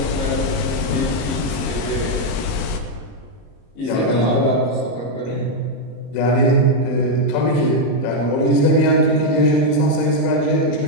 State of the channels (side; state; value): right; late; 33 ms